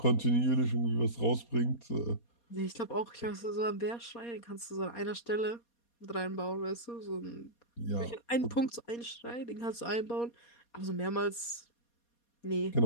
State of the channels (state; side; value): late; right; 4.2 ms